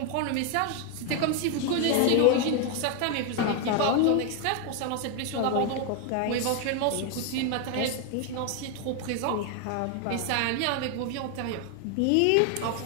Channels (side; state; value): both; different; correlation 0.01